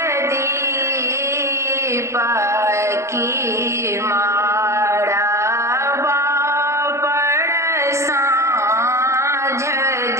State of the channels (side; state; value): left; late; 0.14 ms